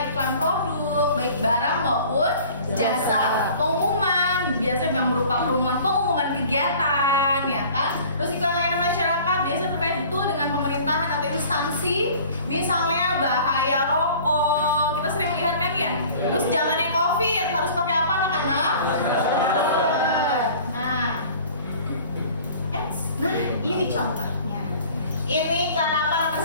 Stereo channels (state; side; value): inverted; both; correlation -0.47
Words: iklan produk, baik barang maupun jasa. Pengumuman biasa yang berupa pengumuman kegiatan, ya kan? Terus iklan layanan masyarakat biasa terkait betul dengan pemerintahan atau instansi, misalnya bahaya rokok. Kita sering lihat kan ya. Terus zamannya COVID harus pakai apa anak-anak? Nah, ini contohnya. Ini iklan apa nomor